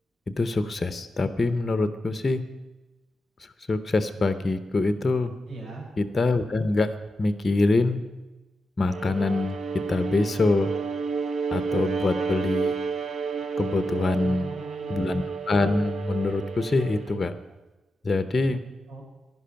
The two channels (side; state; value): both; normal; correlation 0.89